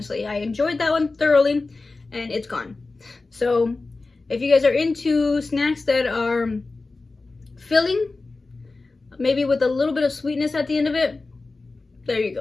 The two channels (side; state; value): right; quieter; 3.6 dB